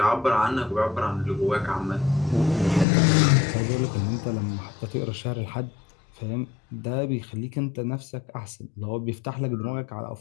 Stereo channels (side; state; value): right; drops out; at 2.9 s